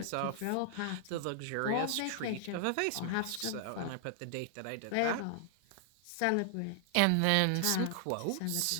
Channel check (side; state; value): both; different; correlation 0.00